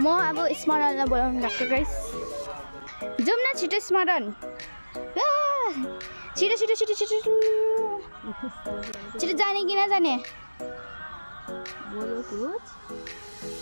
अब स्मरणलाई बोलाउनु गएको गाइस जाउँ न छिटो स्मरण छिटो छिटो छिटो छिटो छिटो जाने कि नजाने बोलो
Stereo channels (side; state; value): both; inverted; correlation -1.00